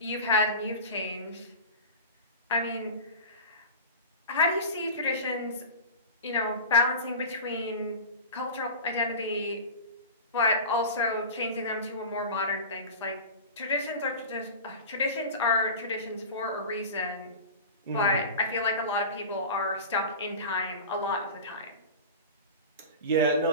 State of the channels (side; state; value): both; inverted; correlation -0.31